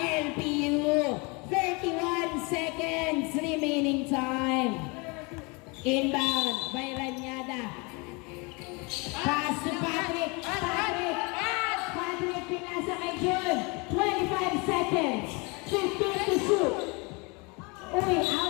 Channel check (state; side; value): quieter; right; 29.0 dB